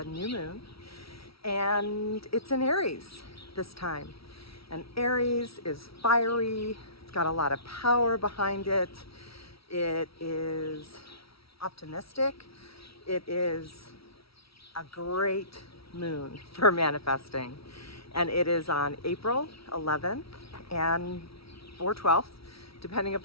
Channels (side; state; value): right; late; 0.75 ms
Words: new moon. And it's in Aries this time. And Aries is fiery, it's got a lot of power behind it. It is optimistic. It is a great moon for manifesting. And it is on April 11th and or 12th, depending